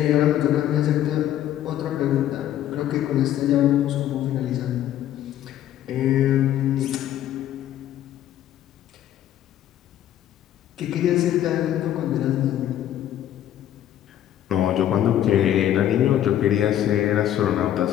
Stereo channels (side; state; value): right; quieter; 11.7 dB